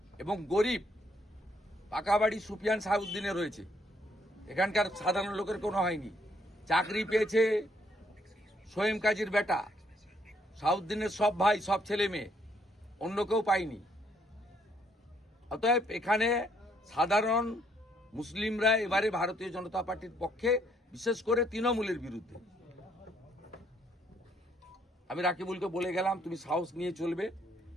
এবং গরিব, পাকা বাড়ি সুফিয়ান সাহেবউদ্দিনে রয়েছে, এখানকার সাধারণ লোকের কোনো হয়নি। চাকরি পেয়েছে সোয়েম কাজীর বেটা, সাউদ্দিনের সব ভাই, সব ছেলে মেয়ে, অন্য কেউ পায়নি। অতএব এখানে সাধারণ মুসলিমরা এবারে ভারতীয় জনতা পার্টির পক্ষে, বিশেষ করে তৃণমূলের বিরুদ্ধে। আমি রাকিবুলকে বলে গেলাম, তুমি সাহস নিয়ে চলবে।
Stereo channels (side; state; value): both; normal; correlation 0.69